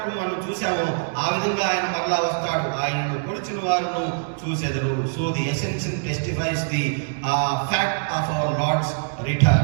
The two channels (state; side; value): silent; left; digital silence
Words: మనం చూసామో ఆ విధంగా ఆయన మరలా వస్తాడు. ఆయనను పొడిచిన వారును చూసెదరు. So the essential testifies the fact of our Lord's